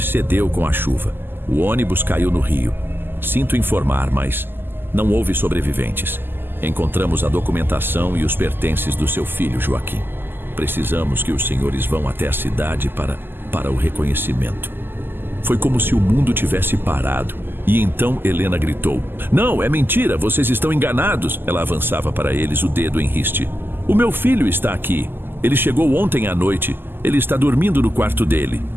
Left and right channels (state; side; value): late; left; 0.097 ms